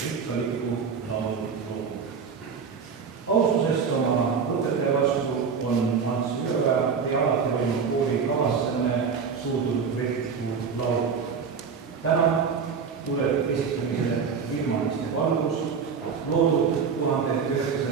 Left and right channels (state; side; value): quieter; left; 6.0 dB